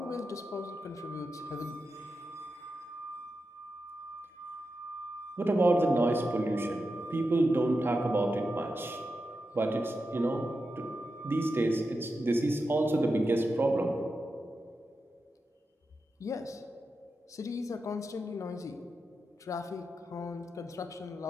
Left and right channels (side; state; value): both; normal; correlation 0.89